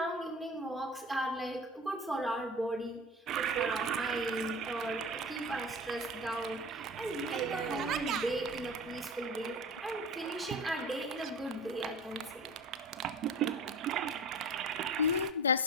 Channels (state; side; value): normal; both; correlation 0.36